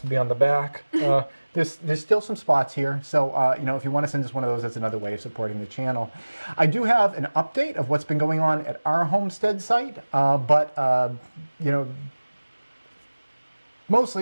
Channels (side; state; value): both; inverted; correlation -1.00